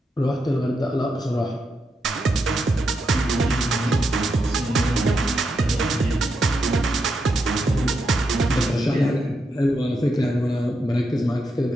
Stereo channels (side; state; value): both; normal; correlation 0.83